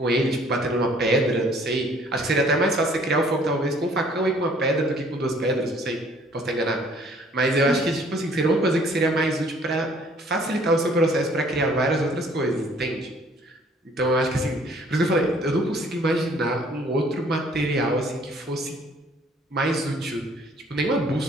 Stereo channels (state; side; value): normal; both; correlation 0.59